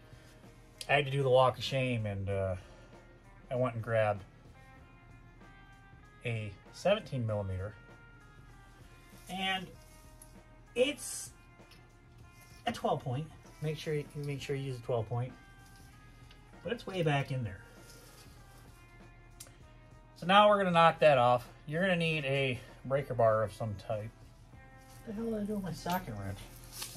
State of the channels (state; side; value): identical; both; correlation 1.00